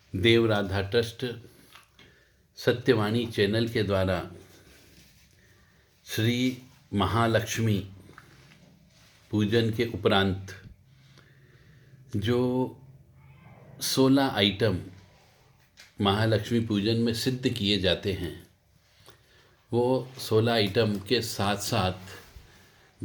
देव राधा ट्रस्ट सत्यवाणी चैनल के द्वारा श्री महालक्ष्मी पूजन के उपरांत जो 16 आइटम महालक्ष्मी पूजन में सिद्ध किए जाते हैं, वो 16 आइटम के साथ साथ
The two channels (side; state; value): both; identical; correlation 1.00